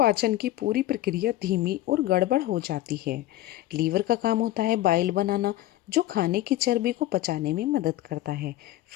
की पूरी प्रक्रिया धीमी और गड़बड़ हो जाती है। लीवर का काम होता है बाइल बनाना, जो खाने की चर्बी को पचाने में मदद करता है।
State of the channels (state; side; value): quieter; right; 15.0 dB